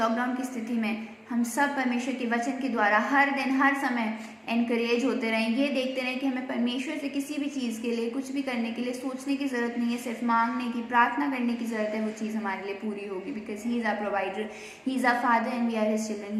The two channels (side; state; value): both; identical; correlation 1.00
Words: की स्थिति में हम सब परमेश्वर के वचन के द्वारा हर दिन, हर समय एनकरेज होते रहें, ये देखते रहें कि हमें परमेश्वर से किसी भी चीज़ के लिए, कुछ भी करने के लिए सोचने की ज़रूरत नहीं है, सिर्फ मांगने की, प्रार्थना करने की ज़रूरत है, वो चीज़ हमारे लिए पूरी होगी। Because he is our provider, he is our father and we are his children,